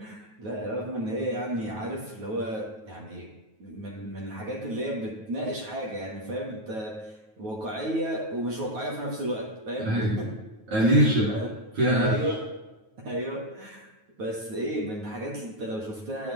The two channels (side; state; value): left; late; 9.3 ms